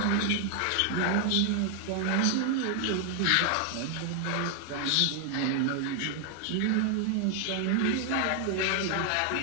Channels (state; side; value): different; both; correlation 0.00